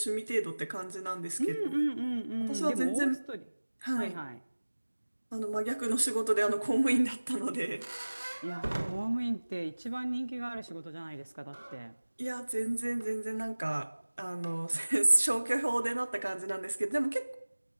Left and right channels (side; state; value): both; inverted; correlation -1.00